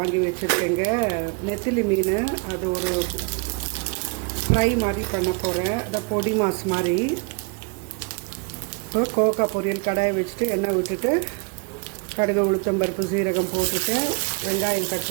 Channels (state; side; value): quieter; left; 34.3 dB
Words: வச்சுருக்கேங்க, நெத்திலி மீன். அது ஒரு ஃப்ரை மாதிரி பண்ண போகிறேன், அதை பொடி மாஸ் மாதிரி. இப்போ கோவக்காய் பொரியல் கடாயை வச்சுட்டு எண்ணெய் விட்டுட்டு கடுகு, உளுத்தம்பருப்பு, சீரகம் போட்டுட்டு வெங்காயம் கட்